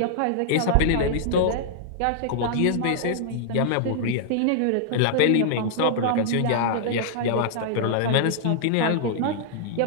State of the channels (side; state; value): both; different; correlation -0.01